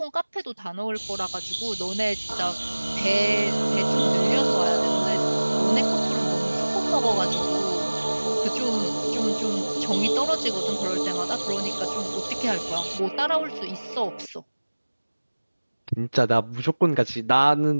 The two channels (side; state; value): both; inverted; correlation -1.00